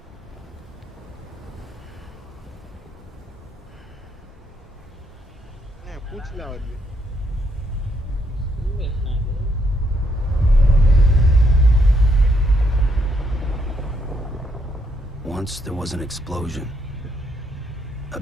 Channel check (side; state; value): both; normal; correlation 0.74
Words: பூச்சிலாம் வருது. Once there was an explosion. A